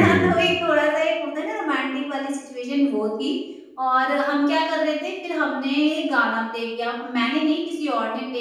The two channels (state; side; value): identical; both; correlation 1.00